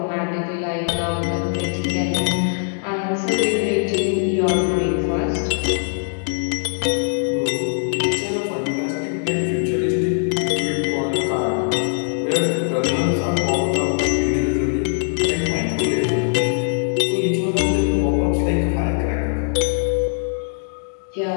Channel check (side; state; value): right; silent; digital silence